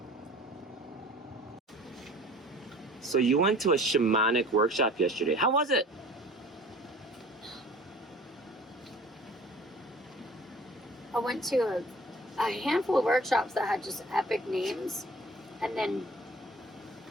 So you went to a shamanic workshop yesterday. How was it? I went to a handful of workshops that had just epic names, and then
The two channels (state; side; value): normal; both; correlation 0.47